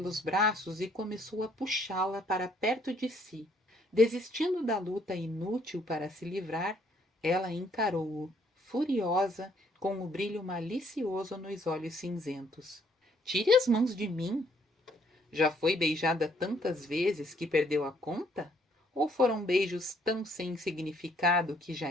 braços e começou a puxá-la para perto de si. Desistindo da luta inútil para se livrar, ela encarou-o, furiosa, com o brilho malicioso nos olhos cinzentos. Tire as mãos de mim! Já foi beijada tantas vezes que perdeu a conta? Ou foram beijos tão sem significado que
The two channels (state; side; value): normal; both; correlation 0.66